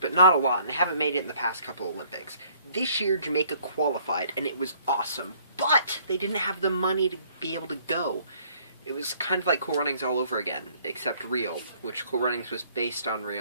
not a lot, and they haven't made it in the past couple Olympics. This year, Jamaica qualified, and it was awesome, but they didn't have the money to be able to go. It was kind of like Cool Runnings all over again, except real, which Cool Runnings was based on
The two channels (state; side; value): inverted; both; correlation -0.61